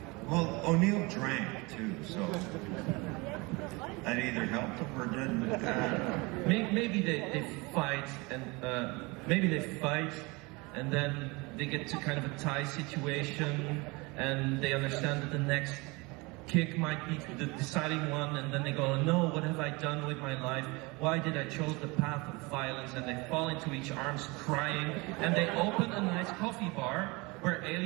drank too, so that either helped him or didn't. Maybe they fight and then they get to kind of a tie situation and they understand that the next kick might be the deciding one, and then they go, no, what have I done with my life? Why did I choose the path of violence? And they fall into each arms crying, and they open a nice coffee bar where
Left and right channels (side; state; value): left; quieter; 25.8 dB